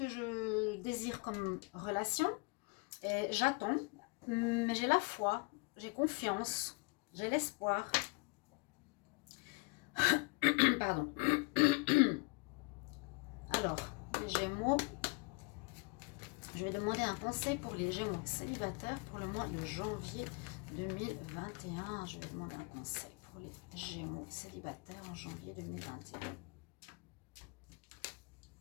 je désire comme relation. Et j'attends, mais j'ai la foi, j'ai confiance, j'ai l'espoir. Pardon. Alors, les Gémeaux, je vais demander un conseil pour les Gémeaux célibataires pour le mois de janvier 2021. Je vais demander un conseil pour les Gémeaux célibataires en janvier 2021.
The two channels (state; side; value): quieter; right; 30.3 dB